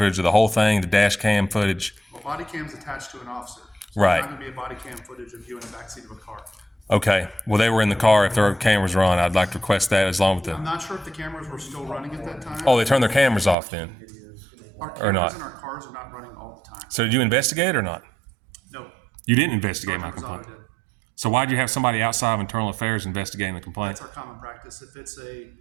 of the whole thing, the dash cam footage. Well, body cam's attached to an officer. So Right. There's not going to be a body cam footage of you in the backseat of a car. Okay, well, they were in the car. If their cameras were on, I'd like to request that as long as I'm the. not sure if the cameras were still running at that time. Oh, they turned their cameras off then. Our or cameras not. in our cars are not running all the time. So did you investigate or not? No. You didn't investigate my Sergeant complaint. Rosado did. So why'd you have somebody outside of Internal Affairs investigating the complaint? That's our common practice. If it's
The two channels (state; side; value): drops out; left; at 13.6 s